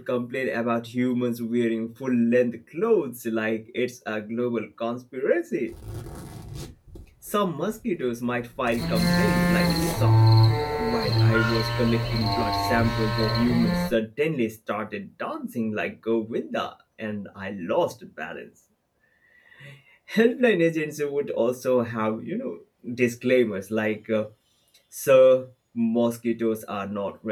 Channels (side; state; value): both; identical; correlation 1.00